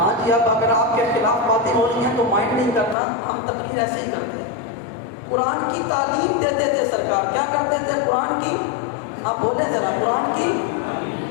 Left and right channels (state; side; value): drops out; right; at 3.0 s